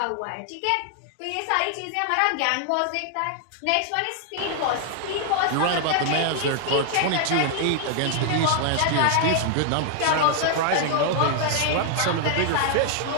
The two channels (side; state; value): both; different; correlation 0.00